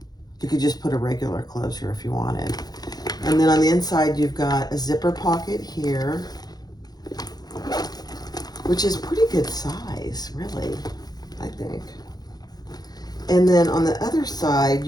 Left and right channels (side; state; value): right; late; 0.19 ms